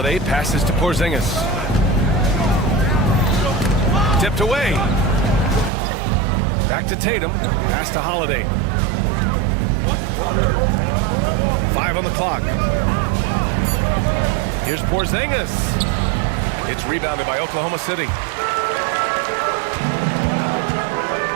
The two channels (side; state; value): left; drops out; at 5.7 s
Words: passes to Porzingis. Tipped away. Back to Tatum. Pass to Holiday. 5 on the clock. Here's Porzingis. It's rebounded by Oklahoma City.